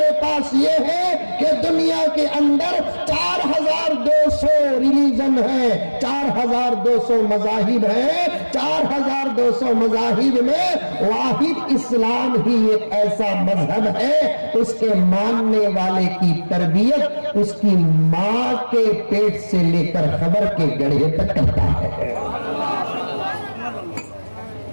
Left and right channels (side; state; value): both; inverted; correlation -1.00